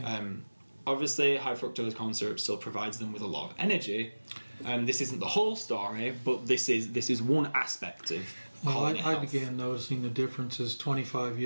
Obviously, high fructose corn syrup still provides them with a lot of energy. This isn't the whole story, but this is one aspect of colony I health. began noticing the differences 25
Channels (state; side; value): inverted; both; correlation -1.00